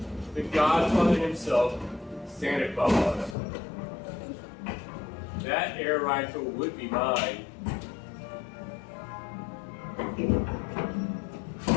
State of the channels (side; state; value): right; drops out; at 3.4 s